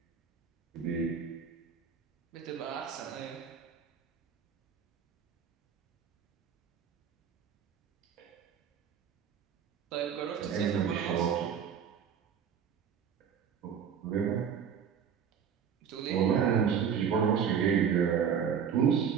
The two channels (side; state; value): left; quieter; 7.6 dB